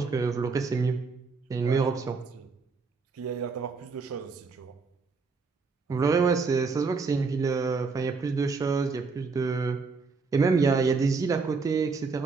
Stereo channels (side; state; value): left; quieter; 4.6 dB